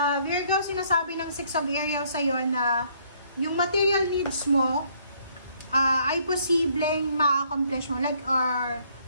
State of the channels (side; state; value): both; inverted; correlation -0.65